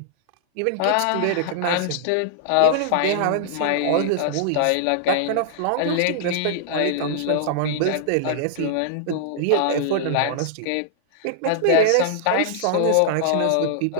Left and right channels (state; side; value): different; both; correlation -0.01